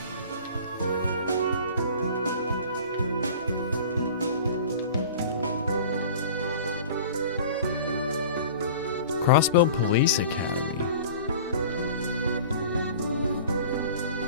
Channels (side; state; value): both; inverted; correlation -0.41